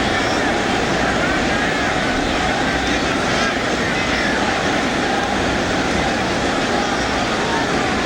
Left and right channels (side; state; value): both; identical; correlation 1.00